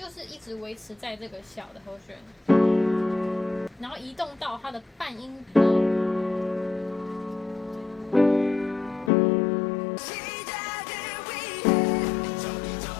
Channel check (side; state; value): right; drops out; at 9.1 s